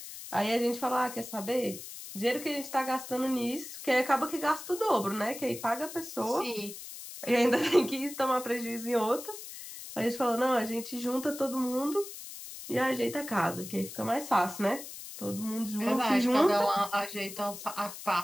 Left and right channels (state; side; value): noise; left; hiss, 12 dB below the sound